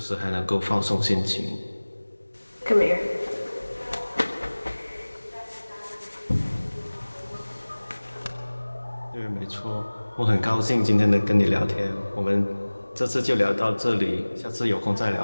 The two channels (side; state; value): both; inverted; correlation -1.00